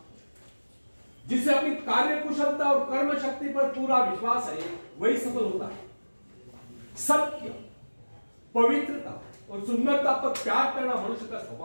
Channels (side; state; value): both; inverted; correlation -1.00